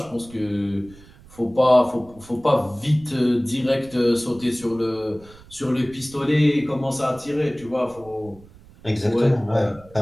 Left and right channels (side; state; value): right; noise; rumble, 23 dB below the sound